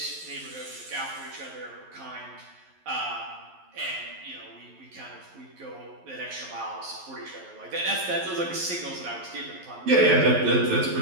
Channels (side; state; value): left; late; 11 ms